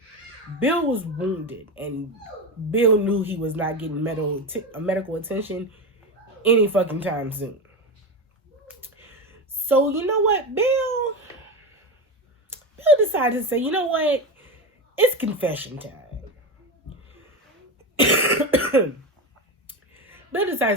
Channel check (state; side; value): normal; both; correlation 0.19